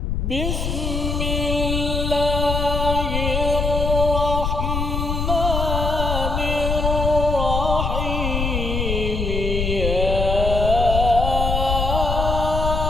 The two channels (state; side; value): noise; left; rumble, 1 dB below the sound